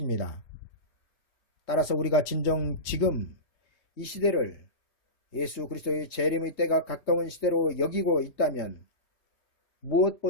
따라서 우리가 진정 지금 이 시대를 예수 그리스도의 재림의 때가 가까운 시대로 여기고 있다면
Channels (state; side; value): late; right; 3.2 ms